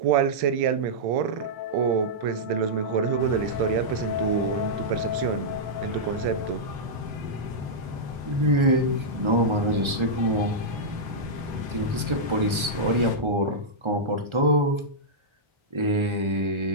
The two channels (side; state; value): left; late; 1.3 ms